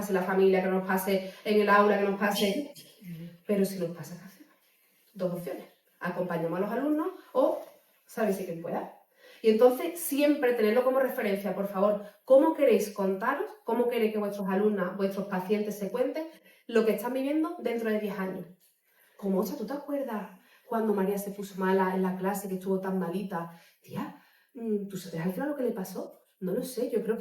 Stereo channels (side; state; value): both; identical; correlation 1.00